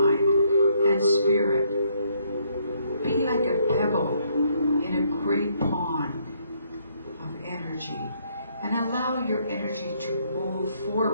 and spirit, be like a pebble in a great pond of energy, and allow your energy to move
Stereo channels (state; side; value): inverted; both; correlation -0.70